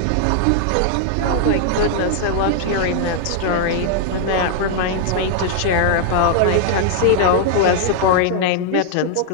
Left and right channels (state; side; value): different; both; correlation 0.00